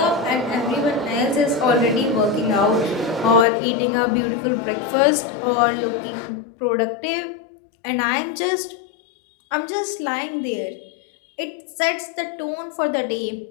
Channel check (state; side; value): drops out; right; at 3.5 s